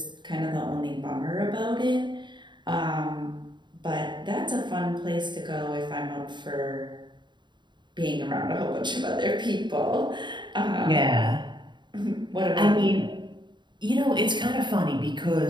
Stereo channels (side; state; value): left; late; 0.22 ms